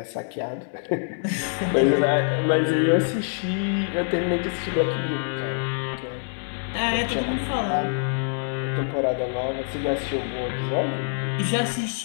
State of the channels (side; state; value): right; silent; digital silence